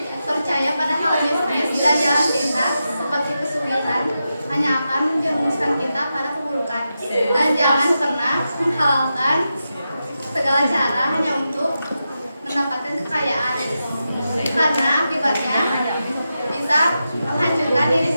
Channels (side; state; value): both; inverted; correlation -0.89